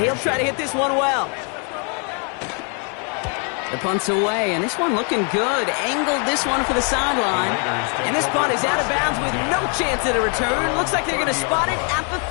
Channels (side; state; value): right; quieter; 39.3 dB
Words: he'll try to hit this one well. The punt's away, and this one looking good. Angled this one for the sideline. And this punt is out of bounds with no chance at a return. Looks like they're going to spot it at the